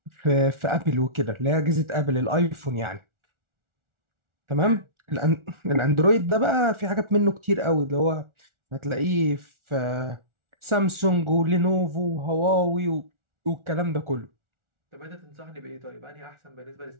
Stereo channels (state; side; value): late; left; 1.4 ms